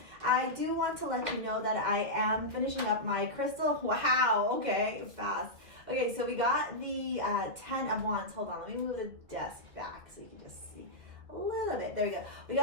I do want to let you know that I am finishing up my crystal. Wow, okay, fast. Okay, so we got the 10 of Wands. Hold on, let me move the desk back so you can just see a little bit. There we go. We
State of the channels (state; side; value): late; left; 1.9 ms